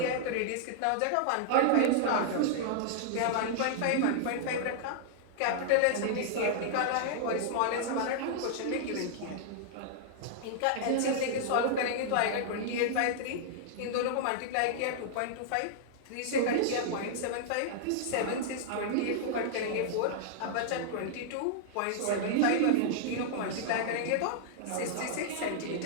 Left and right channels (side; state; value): both; different; correlation -0.01